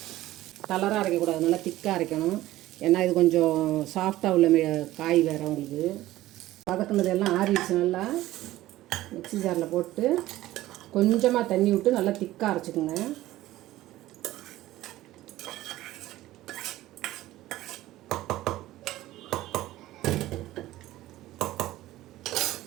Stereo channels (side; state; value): left; quieter; 15.8 dB